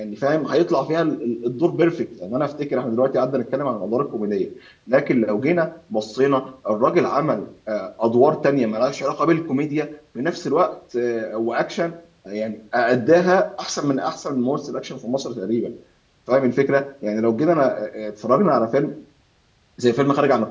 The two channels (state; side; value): identical; both; correlation 1.00